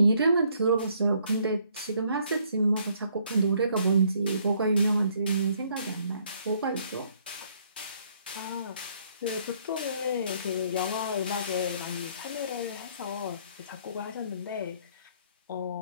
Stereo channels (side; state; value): both; inverted; correlation -0.66